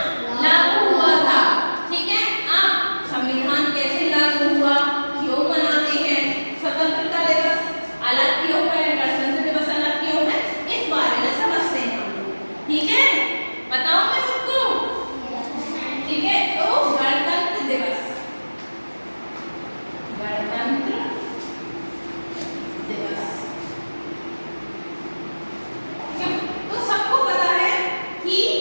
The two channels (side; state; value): both; inverted; correlation -1.00